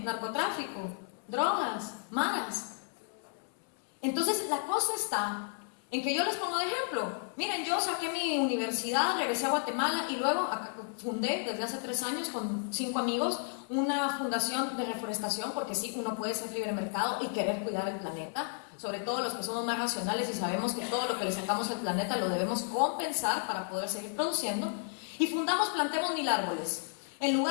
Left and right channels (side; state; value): right; silent; 56 dB below the other